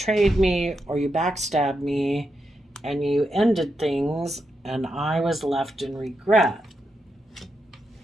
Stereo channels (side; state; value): both; normal; correlation 0.85